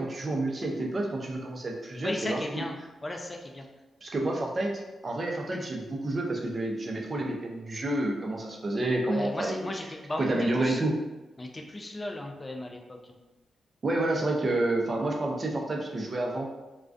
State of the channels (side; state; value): both; normal; correlation 0.87